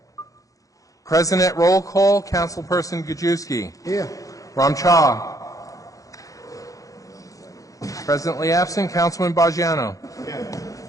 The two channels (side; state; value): right; late; 0.16 ms